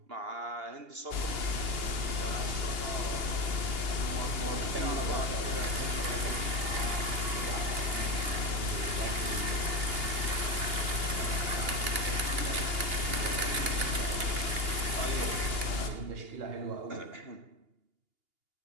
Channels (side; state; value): left; late; 2.8 ms